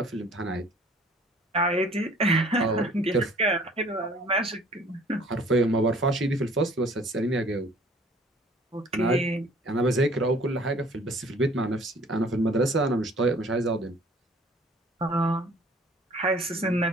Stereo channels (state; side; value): normal; both; correlation 0.53